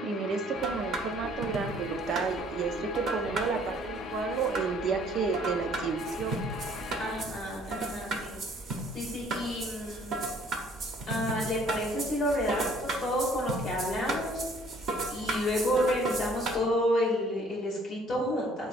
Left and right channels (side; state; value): both; normal; correlation 0.58